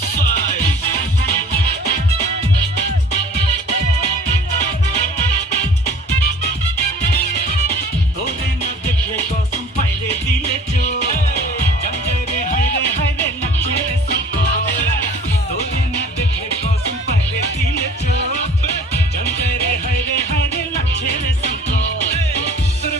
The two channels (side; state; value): both; normal; correlation 0.48